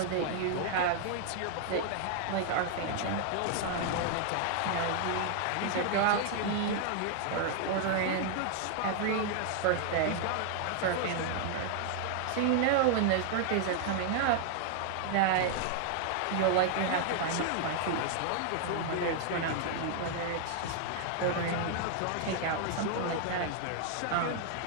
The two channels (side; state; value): both; different; correlation 0.00